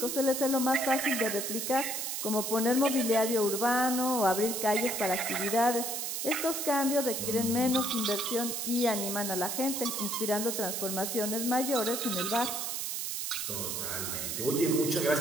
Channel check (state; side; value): noise; right; hiss, 3 dB below the sound